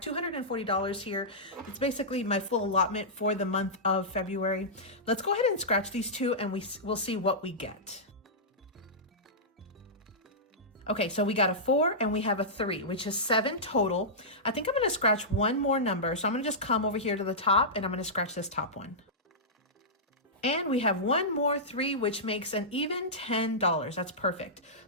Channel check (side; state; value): both; normal; correlation -0.15